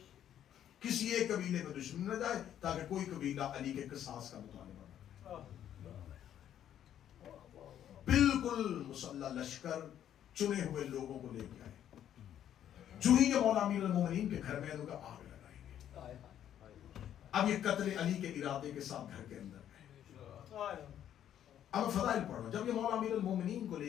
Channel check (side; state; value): right; quieter; 10.5 dB